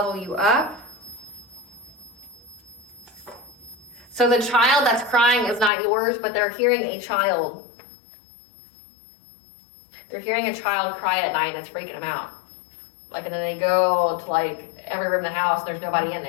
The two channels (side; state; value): right; drops out; at 5.7 s